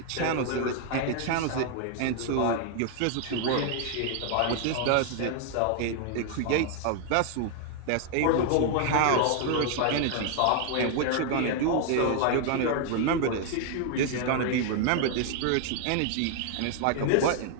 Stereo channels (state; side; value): different; both; correlation 0.00